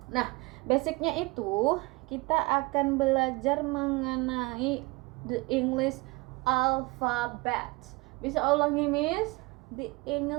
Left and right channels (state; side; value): quieter; left; 24.6 dB